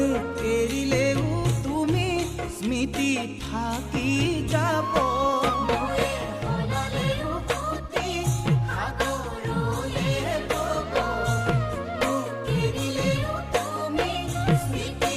এৰিলেও তুমি স্মৃতি থাকি যাব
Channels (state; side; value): identical; both; correlation 1.00